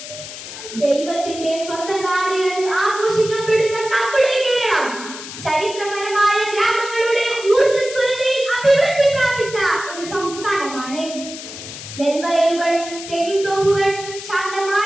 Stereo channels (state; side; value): noise; left; hiss, 11 dB below the sound